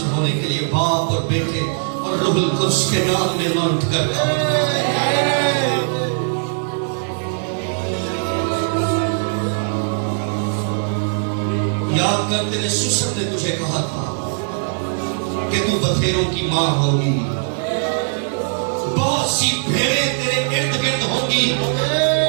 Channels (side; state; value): left; silent; digital silence